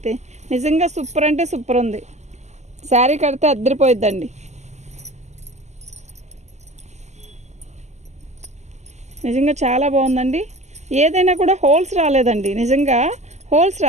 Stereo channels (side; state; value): left; late; 0.33 ms